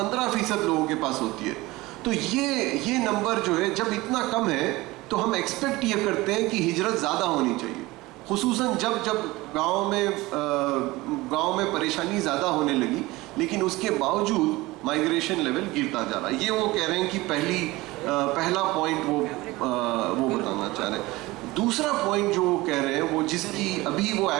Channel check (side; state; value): left; quieter; 20.3 dB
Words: लोगों के पास होती है। तो ये नंबर जो है, जब इतना कम है तो हम एक्सपेक्ट ये करते हैं कि हिजरत ज़्यादा होनी चाहिए, खुसूसन जब गांव में परेशानी ज़्यादा होने लगी, लेकिन उसके बावजूद माइग्रेशन लेवल गिरता जा रहा है। ये वो कह रहे हैं कि पहला पॉइंट वो बताना चाह रहे हैं। दूसरा पॉइंट जो वो कह रहे हैं, वो जिसकी अभी वो